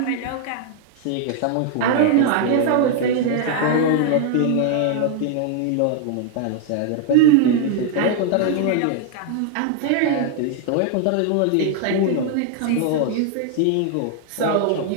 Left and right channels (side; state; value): both; different; correlation 0.00